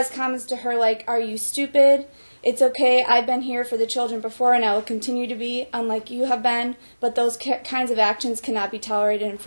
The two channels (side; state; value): both; inverted; correlation -1.00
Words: comments to her like, "Are you stupid? It's okay, I've been here for the children before and I will continue to be, unlike you have been, but those kinds of actions cannot be tolerated, and